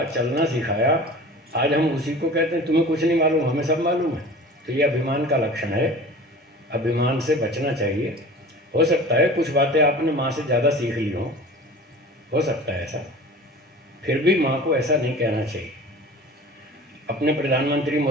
चलना सिखाया, आज हम उसी को कहते हैं तुम्हें कुछ नहीं मालूम, हमें सब मालूम है। तो ये अभिमान का लक्षण है, अभिमान से बचना चाहिए। हो सकता है कुछ बातें आपने माँ से ज़्यादा सीख ली हो सकता है ऐसा, फिर भी माँ को ऐसा नहीं कहना चाहिए। अपने प्रधानमंत्री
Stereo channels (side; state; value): both; normal; correlation 0.40